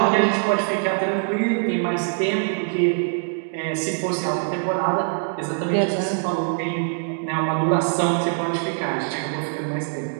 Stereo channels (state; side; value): silent; left; digital silence